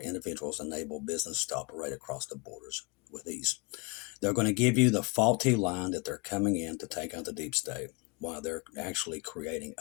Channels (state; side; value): quieter; right; 29.0 dB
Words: individuals, enable business to operate across the borders with ease. They're going to give you the faulty line that they're coming in to take out the deep state while they're actually creating